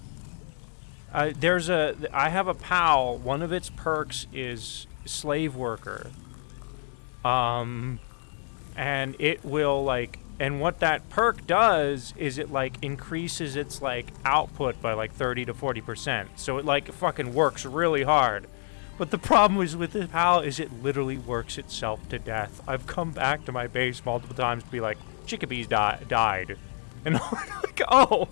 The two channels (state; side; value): silent; right; digital silence